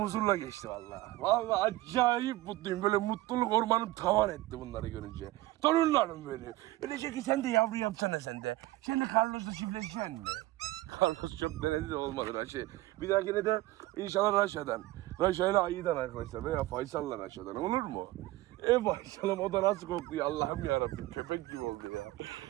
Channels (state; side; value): quieter; left; 17.9 dB